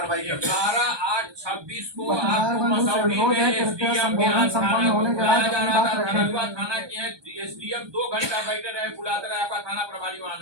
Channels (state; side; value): late; left; 1.2 ms